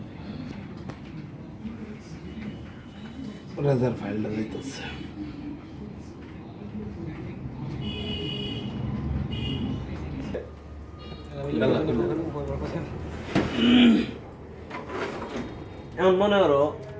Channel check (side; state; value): both; identical; correlation 1.00